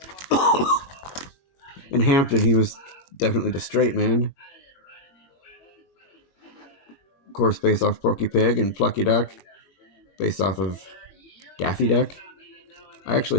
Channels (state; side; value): late; right; 22 ms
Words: In Hampton, he was definitely the straight man. Of course, based off Porky Pig, and Plucky Duck, based off of Daffy Duck. I